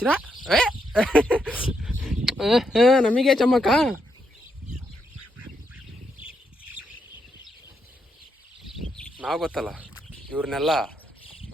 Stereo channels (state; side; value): normal; both; correlation 0.80